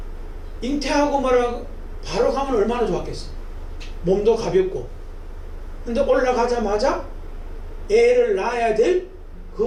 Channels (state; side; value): identical; both; correlation 1.00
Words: 잉태하고 말하고 바로 가면 얼마나 좋았겠어. 몸도 가볍고. 근데 올라가자마자 애를 낳아야 될